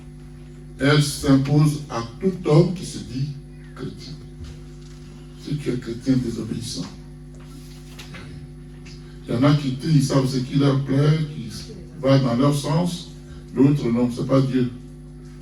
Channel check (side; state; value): both; identical; correlation 1.00